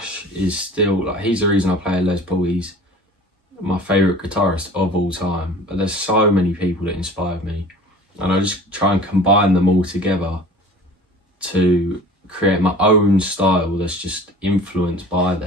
is still, like, he's the reason I play Les Paul. He's my favourite guitarist of all time. But there's so many people that inspired me, and I just try and combine them all together to create my own style that's just influenced by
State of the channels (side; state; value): both; normal; correlation 0.43